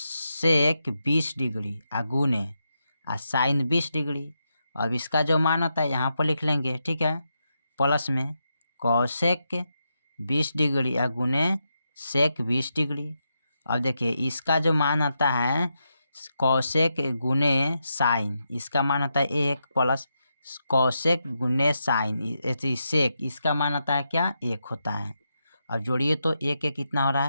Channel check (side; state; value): both; inverted; correlation -0.85